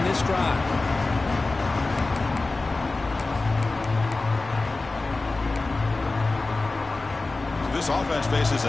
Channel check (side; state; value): right; quieter; 3.4 dB